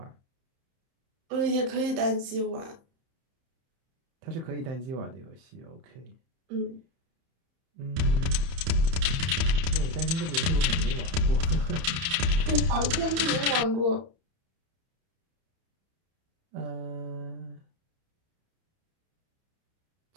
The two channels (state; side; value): late; left; 30 ms